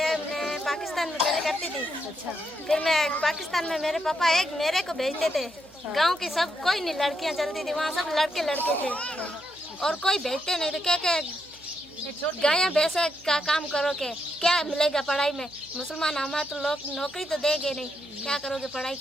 पाकिस्तान में पहले करती थी। अच्छा। फिर मैं पाकिस्तान में मेरे पापा एक मेरे को भेजते थे। गांव की सब कोई नहीं लड़कियां चलती थी, वहाँ सब लड़के थे और कोई भेजते नहीं थे। क्या गाया भैंसा का काम करो के क्या मिलेगा पढ़ाई में? मुसलमान हमारे तो लोग नौकरी तो देंगे नहीं, क्या करोगे पढ़ाई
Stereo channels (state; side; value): noise; right; hum, 27 dB below the sound